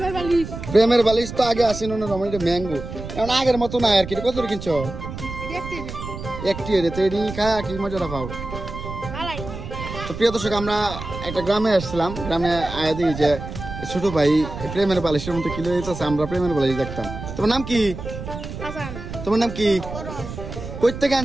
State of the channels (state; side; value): noise; right; rumble, 9 dB below the sound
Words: প্রেমের বালিশ তো আগে আসেন ম্যাঙ্গো, এখন আগের মতো নাই আর কি। কত কিনছো? একটি খায় কি মজাটা পাও। তো প্রিয় দর্শক, আমরা একটা গ্রামে আসছিলাম। গ্রামে আয়া দিই যে ছোট ভাই প্রেমের বালিশের মতো কিলো দিতেছে। আমরা প্রেমের বালিশ দেখতাম। তোমার নাম কি? তোমার নাম কি? কই থেকে